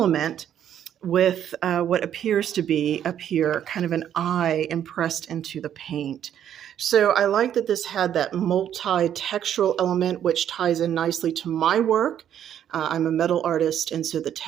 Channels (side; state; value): left; quieter; 10.0 dB